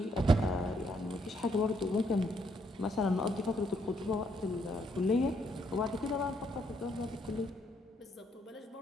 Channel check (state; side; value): normal; both; correlation 0.72